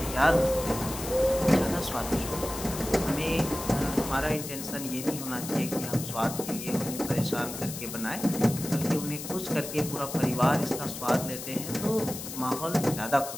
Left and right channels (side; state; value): left; noise; hiss, 9 dB below the sound